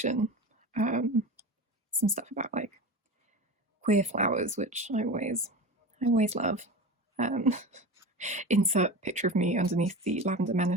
some stuff about like queer flowers, which I always love. Insert picture of me underneath the Lavender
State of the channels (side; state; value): both; normal; correlation 0.29